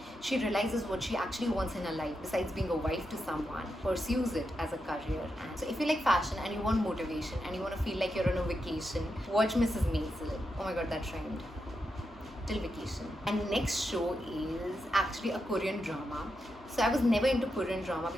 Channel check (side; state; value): both; normal; correlation 0.86